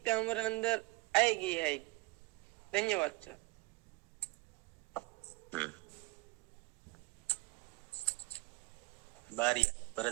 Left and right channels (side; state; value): left; quieter; 23.2 dB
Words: हमारे अंदर आएगी है। धन्यवाद सर। बारिया